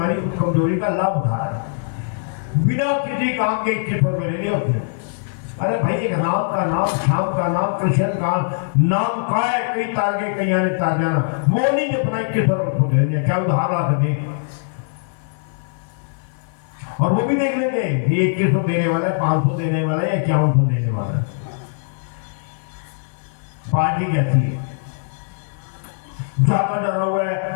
उस कमजोरी का लाभ उठा रहा है बिना किसी काम के 2100 रुपए ले लिए उसने। अरे भाई एक राम का नाम, श्याम का नाम, कृष्ण का नाम का है, कई तार के कई आने तार जाना, वो नहीं जपना 2100 रुपए दे, क्या उधार ला सके। और वो भी देख लेंगे ये 2100 देने वाला है, 500 देने वाला है या 5100 देने वाला है। पार्टी कैसी है? ज्यादा डरा हुआ है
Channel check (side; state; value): right; silent; digital silence